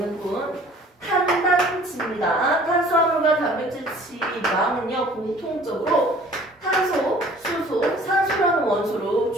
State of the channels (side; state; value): both; normal; correlation 0.51